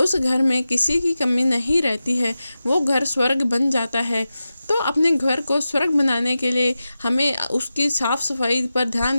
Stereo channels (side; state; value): both; inverted; correlation -0.93